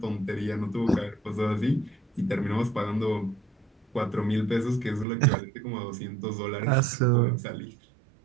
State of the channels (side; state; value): left; drops out; at 5.1 s